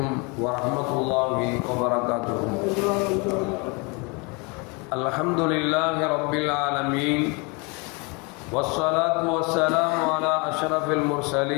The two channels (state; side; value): quieter; right; 30.3 dB